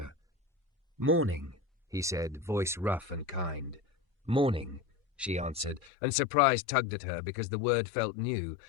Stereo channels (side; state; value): right; drops out; at 5.9 s